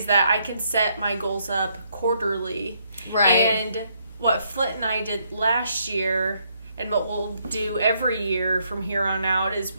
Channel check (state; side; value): inverted; both; correlation -0.73